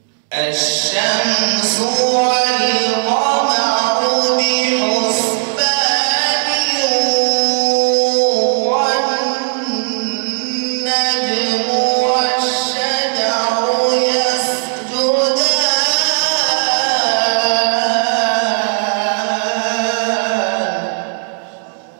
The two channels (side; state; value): left; silent; digital silence